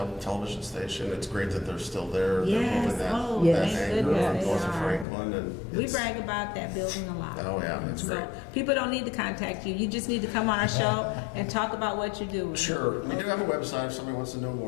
station. It's great that they're still there. Yes. They're moving that, Oh, Yes. that thank anchor goodness north they of are. Franklin. And We it's- brag about that building a lot. Oh, yeah, it's So great. people don't need to contact you. You just need to come on our show and talk about what you're doing. Sure. We do have a website if somebody wants to know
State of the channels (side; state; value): right; drops out; at 5.1 s